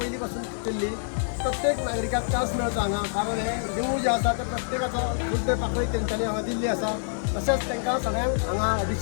पयलीं पासून केल्ली. प्रत्येक नागरिकाक चान्स मेळटा हांगा. कारण हे देवूळ जे आसा ते प्रत्येकाचो बुद्दे पाकळी तेंच्यांनी हांगा दिल्ली आसा. तशेंच तांकां सगळ्यांक हांगा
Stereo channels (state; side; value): silent; right; digital silence